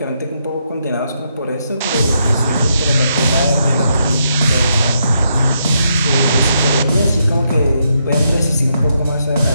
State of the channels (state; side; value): inverted; both; correlation -0.79